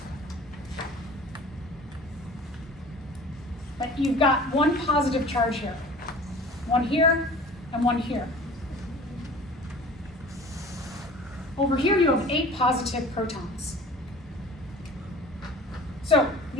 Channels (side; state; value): both; normal; correlation 0.43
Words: that you've got one positive charge here. One here, and one here. Over here you have 8 positive protons. So